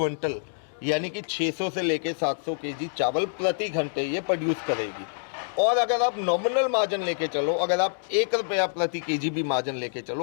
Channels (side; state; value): right; silent; digital silence